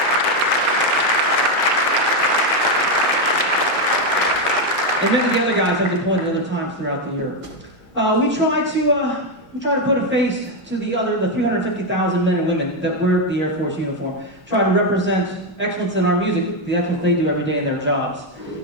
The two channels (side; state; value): both; normal; correlation 0.06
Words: And many of the other guys have deployed at other times throughout the year. We try to put a face to the 350,000 men and women that wear the Air Force uniform. Try to represent excellence in our music, the excellence they do every day in their jobs.